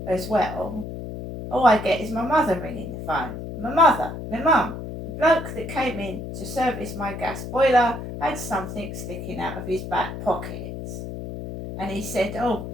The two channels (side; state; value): left; noise; hum, 8 dB below the sound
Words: as well, all I get is my mother ringing the phone. My mother, my mum. The bloke that came in to service my gas boiler had something sticking out of his back pocket. And he said, oh,